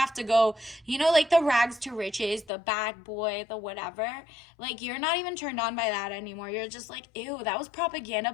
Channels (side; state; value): right; drops out; at 2.5 s